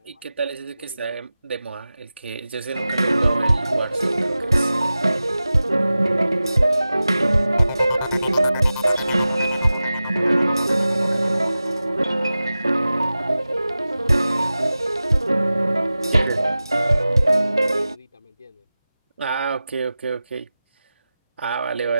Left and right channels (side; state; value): both; inverted; correlation -0.95